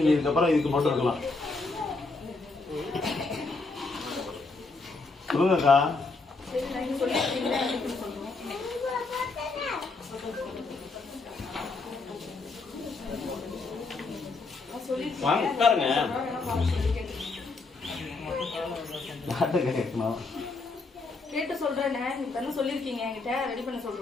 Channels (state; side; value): quieter; right; 3.7 dB